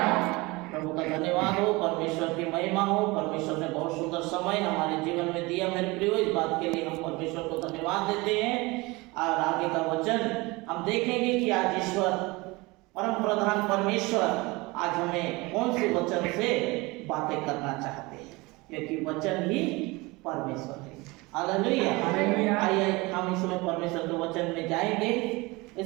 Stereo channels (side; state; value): left; quieter; 23.6 dB